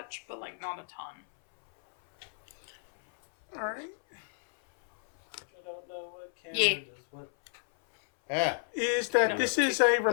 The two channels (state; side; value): silent; right; 57 dB below the other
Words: but like not a ton. All right. I don't know what camera Yeah. does what. Ah, Is that No. this is a